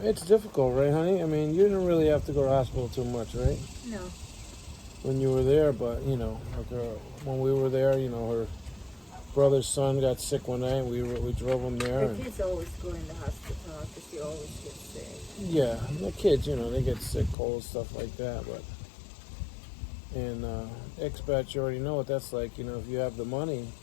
it's difficult, right, honey? I mean, you didn't really have to go to the hospital too much, right? no. When you were there, but, when we were there, her brother's son got sick one night. We drove him there. The kids always go in the hospital because they always get sick. Yeah, the kids, they get sick, cold, stuff like that, but... And expats, you already know what that's like. If you have the money,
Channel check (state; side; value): drops out; right; at 17.4 s